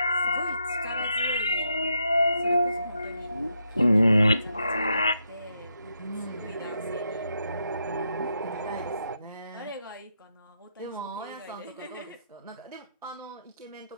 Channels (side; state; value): both; inverted; correlation -0.81